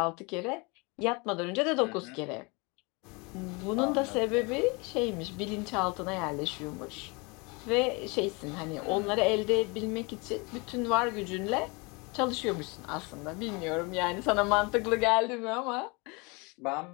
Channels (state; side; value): quieter; right; 28.5 dB